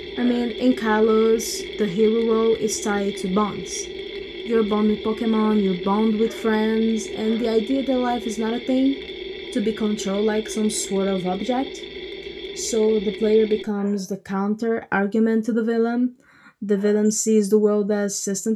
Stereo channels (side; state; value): both; identical; correlation 1.00